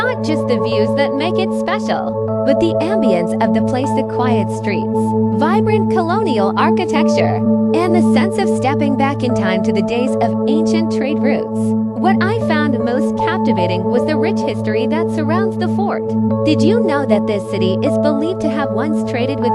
just the views that make it special, but the ambience of the place, the quiet streets, vibrant colonial architecture, and the sense of stepping back in time to the days of ancient trade routes. What I found most captivating was the rich history that surrounds the fort. Did you know that this city is believed to have once traded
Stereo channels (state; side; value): identical; both; correlation 1.00